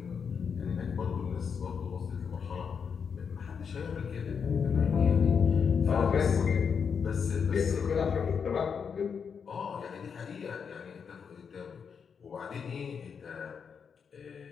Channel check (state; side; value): quieter; right; 6.5 dB